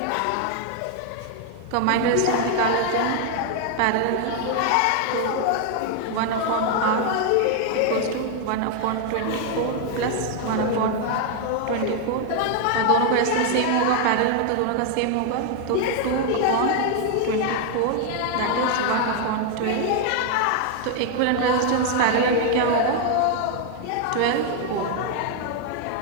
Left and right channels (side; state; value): both; different; correlation 0.00